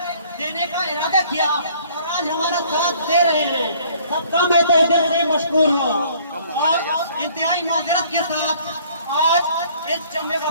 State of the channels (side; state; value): both; inverted; correlation -0.57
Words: کا ارادہ کیا اور آج ہمارا ساتھ دے رہے ہیں. سب کا میں تہ دل سے مشکور ہوں. اور انتہائی معذرت کے ساتھ آج اس جمع